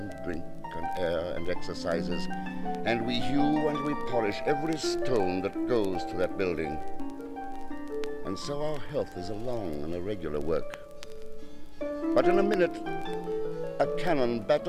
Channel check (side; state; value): both; identical; correlation 1.00